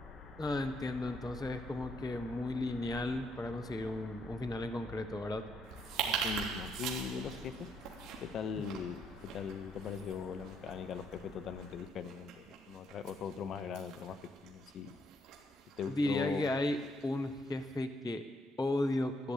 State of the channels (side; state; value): both; normal; correlation 0.73